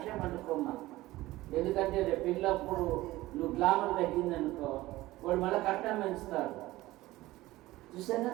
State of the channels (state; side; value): quieter; left; 17.8 dB